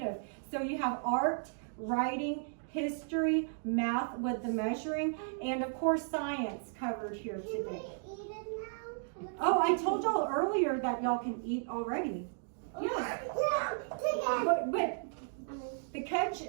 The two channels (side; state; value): left; silent; digital silence